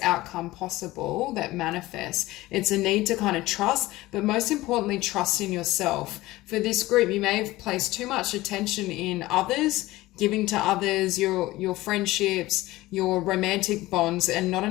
possible that manifests. It's a need to kind of trust, but most importantly, trust in yourself. For this group, you may have placed too much attention in others, giving to others, your friendships, your romantic bonds, and not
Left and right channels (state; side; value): quieter; right; 18.2 dB